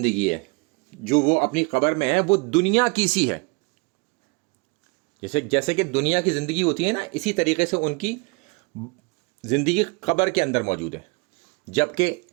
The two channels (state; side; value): quieter; left; 30.4 dB